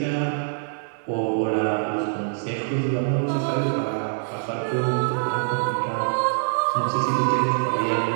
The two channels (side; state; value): left; silent; digital silence